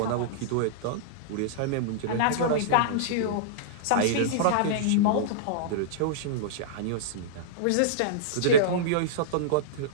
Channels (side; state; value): both; different; correlation -0.03